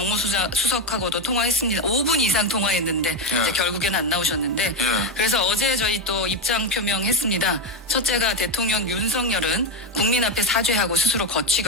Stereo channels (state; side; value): normal; both; correlation 0.10